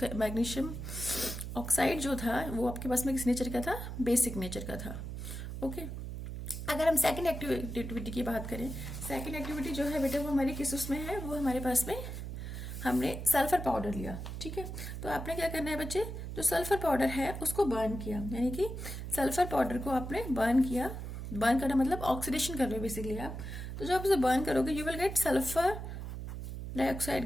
मैग्नीशियम ऑक्साइड जो था वो आपके पास में किस नेचर का था, बेसिक नेचर का था, ओके. अगर हम सेकंड एक्टिविटी की बात करें, सेकंड एक्टिविटी जो है बेटा वो हमारी किस उसमें है, वो हमारे पास में हमने सल्फर पाउडर लिया, ठीक है। तो आपने क्या करना है बच्चे, जो सल्फर पाउडर है उसको बर्न किया, यानी कि सल्फर पाउडर को आपने बर्न किया। बर्न करना मतलब ऑक्सीडेशन कर रहे हो बेसिकली आप। तो जब आप इसे बर्न करोगे you will gate sulphur dioxide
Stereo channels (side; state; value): right; noise; hum, 7 dB below the sound